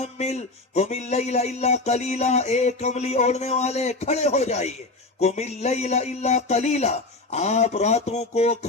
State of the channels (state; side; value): quieter; right; 3.2 dB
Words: قم اللیل الا قلیلا, اے کملی اوڑھنے والے کھڑے ہو جائیے. قم اللیل الا قلیلا, آپ راتوں کو